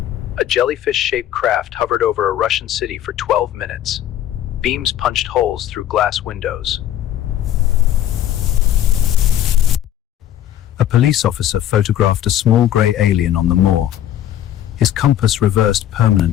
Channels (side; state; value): right; quieter; 11.6 dB